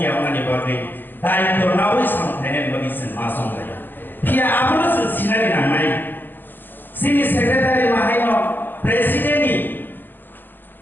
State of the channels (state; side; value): late; right; 0.093 ms